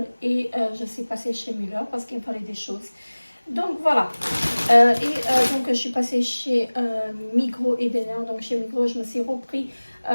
et je suis passée chez Müller parce qu'il me fallait des choses. Donc voilà, je suis passée chez Migros et Denner. Donc chez Migros, je me suis repris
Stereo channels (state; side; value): inverted; both; correlation -1.00